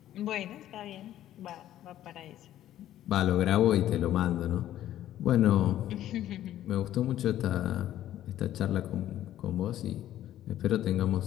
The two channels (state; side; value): quieter; right; 12.6 dB